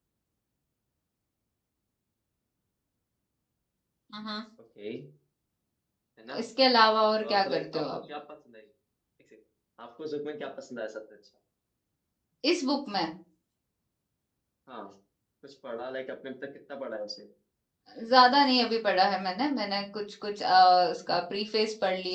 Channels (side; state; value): both; identical; correlation 1.00